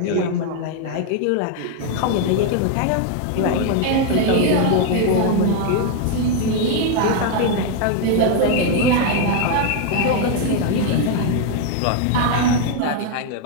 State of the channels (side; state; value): both; different; correlation 0.01